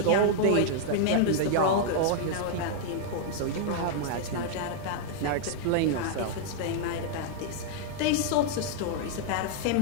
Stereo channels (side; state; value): both; different; correlation -0.01